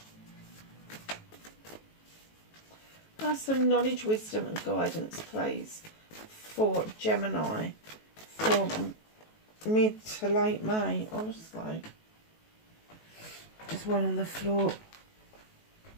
Have some knowledge, wisdom and guidance, please, for Gemini for mid to late May, honestly. There's one on the floor.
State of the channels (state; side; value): late; right; 19 ms